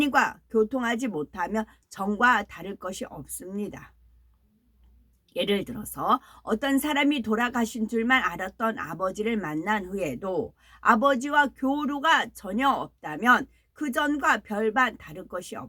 교통하지 못하면 전과 다를 것이 없습니다. 예를 들어서 어떤 사람이 돌아가신 줄만 알았던 아버지를 만난 후에도 아버지와 교류가 전혀 없다면 그 전과 별반 다를 것이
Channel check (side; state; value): both; identical; correlation 1.00